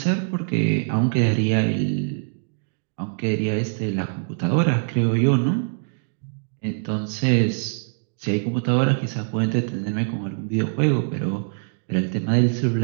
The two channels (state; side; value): silent; left; digital silence